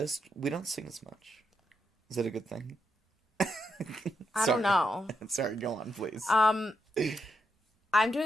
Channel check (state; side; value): normal; both; correlation 0.82